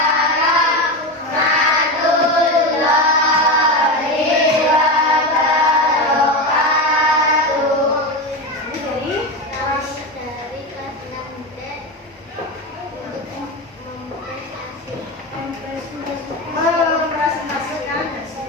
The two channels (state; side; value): normal; both; correlation 0.19